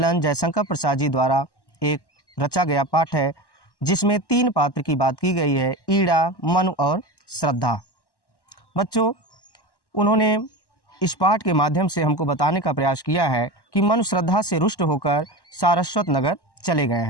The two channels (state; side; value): late; right; 1.1 ms